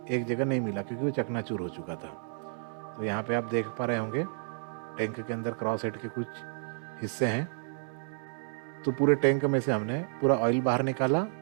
एक जगह नहीं मिला क्योंकि वो चकनाचूर हो चुका था। तो यहाँ पे आप देख पा रहे होंगे टैंक के अंदर क्रॉसहेड के कुछ हिस्से हैं। तो पूरे टैंक में से हमने पूरा ऑयल बाहर निकाला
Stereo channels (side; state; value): left; silent; digital silence